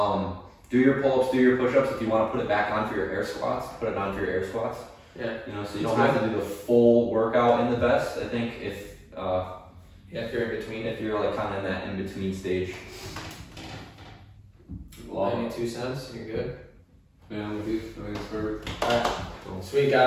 Do your pull-ups, do your push-ups. If you want to put it back on for your air squats, put it on for your air squats. Yeah. So you don't have to do the full workout in the vest. I think if you're in between. If you're like kind of in that in-between stage. 92 cents, you're good. Yeah, I'm with you. I think it's perfect. Alright, sweet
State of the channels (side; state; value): both; identical; correlation 1.00